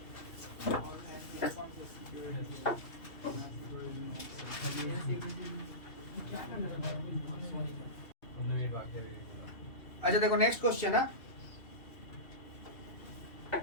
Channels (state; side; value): late; right; 2.7 ms